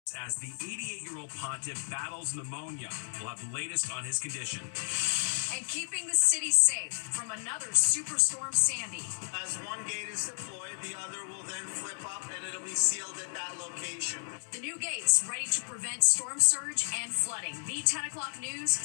As the 88-year-old pontiff battles pneumonia, we'll have the latest on his condition. And keeping the city safe from another superstorm Sandy. As one gate is deployed, the other will then flip up and it'll be sealed at that location. The new gates ready to prevent storm surge and flooding. The 10 o'clock news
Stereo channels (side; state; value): right; silent; 56 dB below the other